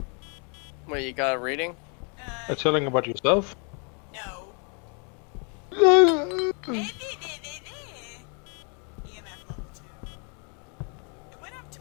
Wait, you got a reading? Are you telling about yourself? No. EMF level 2. It went up to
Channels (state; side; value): quieter; right; 38.0 dB